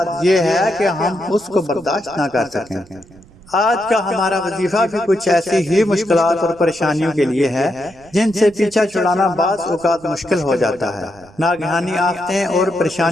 یہ ہے کہ ہم اس کو برداشت نہ کر سکیں۔ آج کا ہمارا وظیفہ بھی کچھ ایسی ہی مشکلات اور پریشانیوں کے لیے ہے جن سے پیچھا چھڑانا بعض اوقات مشکل ہو جاتا ہے۔ ناگہانی آفتیں اور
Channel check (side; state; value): right; noise; rumble, 25 dB below the sound